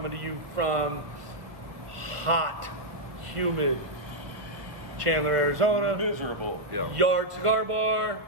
to you from hot, humid Chandler, Arizona. Miserable. Yeah. Yard Cigar Bar.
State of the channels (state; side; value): late; left; 1.0 ms